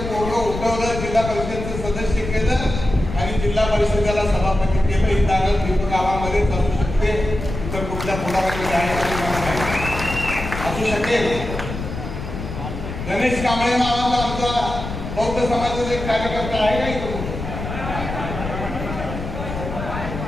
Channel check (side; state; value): left; noise; rumble, 7 dB below the sound